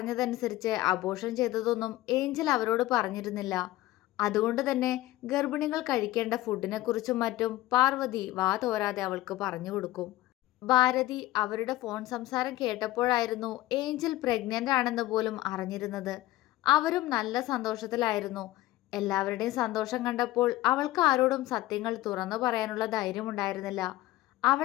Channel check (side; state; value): right; quieter; 16.6 dB